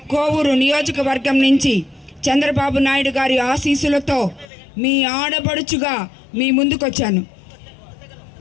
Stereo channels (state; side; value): drops out; right; at 4.5 s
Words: కోవూరు నియోజకవర్గం నుంచి చంద్రబాబు నాయుడు గారి ఆశీస్సులతో మీ ఆడబడుచుగా మీ ముందుకొచ్చాను.